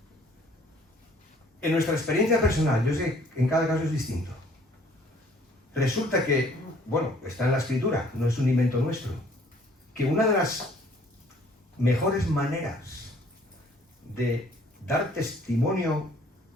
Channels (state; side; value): normal; both; correlation 0.58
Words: En nuestra experiencia personal, yo sé que en cada caso es distinto. Resulta que, bueno, está en la Escritura, no es un invento nuestro, que una de las mejores maneras de dar testimonio